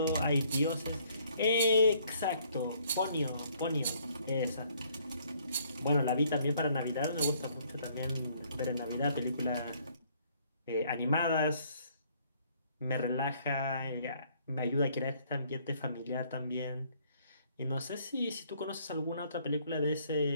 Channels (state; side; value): inverted; both; correlation -0.64